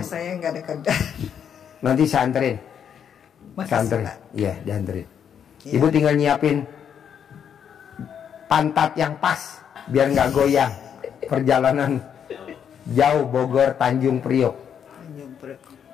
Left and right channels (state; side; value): quieter; right; 8.2 dB